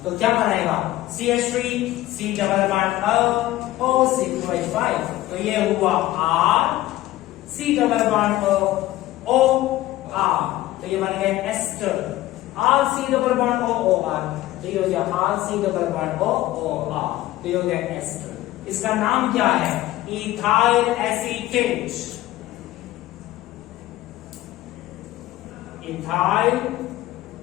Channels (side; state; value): right; quieter; 15.9 dB